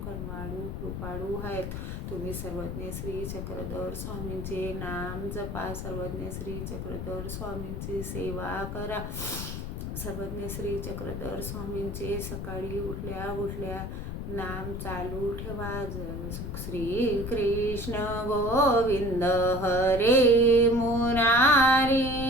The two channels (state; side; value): noise; left; rumble, 5 dB below the sound